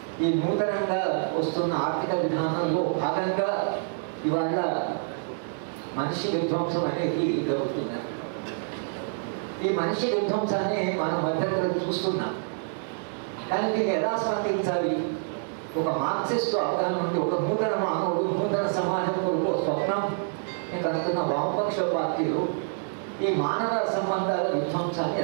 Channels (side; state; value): left; silent; 60 dB below the other